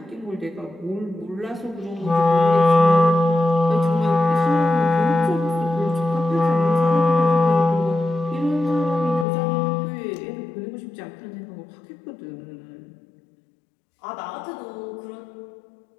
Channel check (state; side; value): drops out; right; at 9.2 s